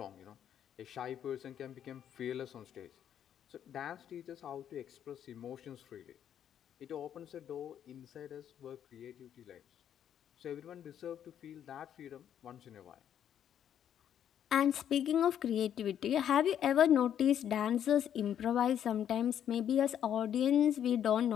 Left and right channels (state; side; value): quieter; right; 9.7 dB